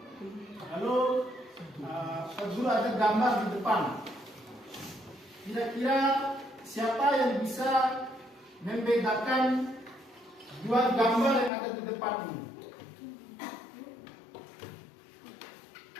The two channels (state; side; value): drops out; right; at 11.5 s